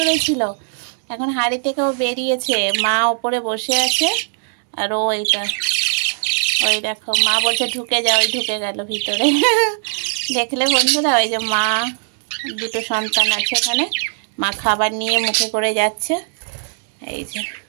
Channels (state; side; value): silent; left; 66 dB below the other